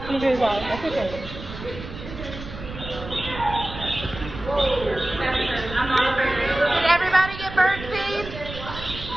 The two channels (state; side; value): noise; right; rumble, 11 dB below the sound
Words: can do his out. That's okay. Did everybody get bird feed?